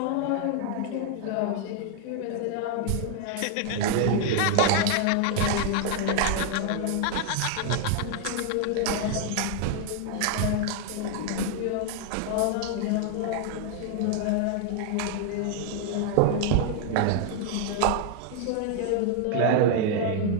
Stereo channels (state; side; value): different; both; correlation 0.00